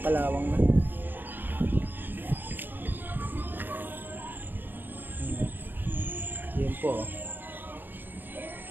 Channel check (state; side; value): late; left; 0.093 ms